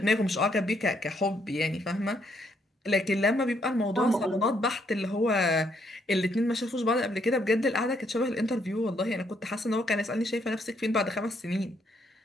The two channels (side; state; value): both; normal; correlation 0.72